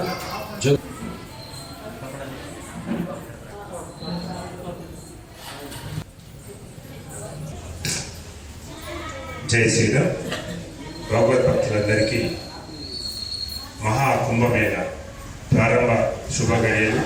జై శ్రీరామ్. భగవద్భక్తులందరికీ మహాకుంభమేళ ప్రారంభ శుభగడియలు.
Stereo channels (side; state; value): both; identical; correlation 1.00